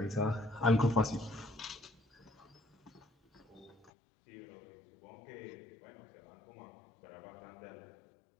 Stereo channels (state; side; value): drops out; right; at 3.9 s